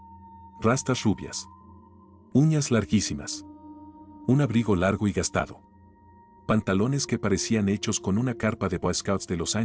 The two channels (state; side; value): identical; both; correlation 1.00